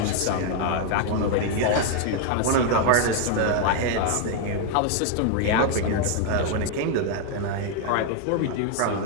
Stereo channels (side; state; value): both; different; correlation 0.00